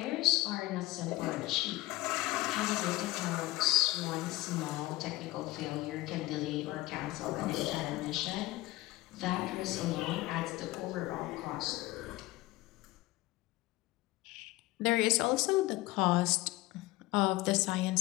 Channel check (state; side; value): quieter; right; 18.6 dB